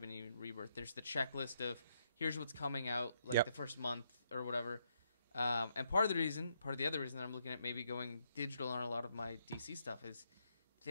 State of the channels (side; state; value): both; inverted; correlation -0.75